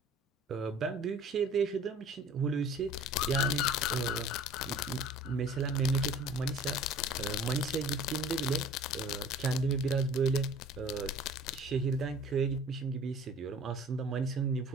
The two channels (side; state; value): both; normal; correlation 0.47